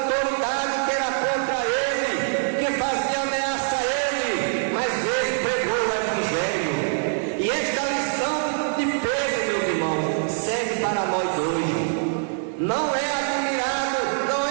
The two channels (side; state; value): left; silent; 63 dB below the other